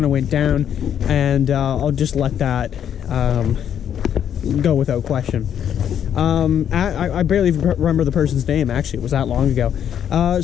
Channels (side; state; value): right; quieter; 9.2 dB